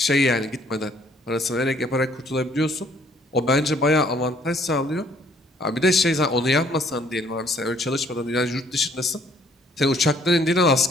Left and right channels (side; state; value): both; normal; correlation 0.62